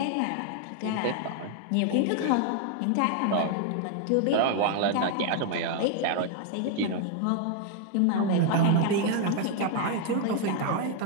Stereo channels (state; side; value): different; both; correlation 0.00